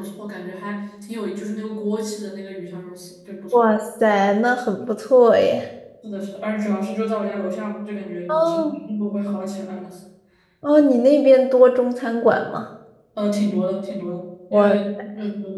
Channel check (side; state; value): both; identical; correlation 1.00